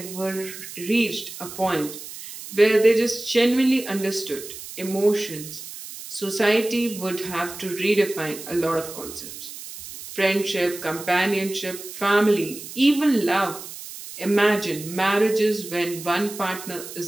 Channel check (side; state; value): right; noise; hiss, 12 dB below the sound